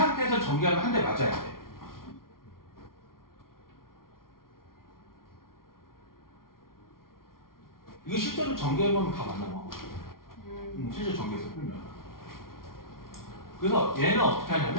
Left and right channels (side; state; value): right; late; 0.92 ms